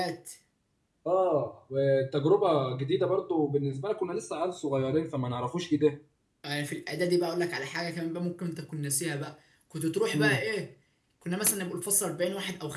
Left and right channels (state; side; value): identical; both; correlation 1.00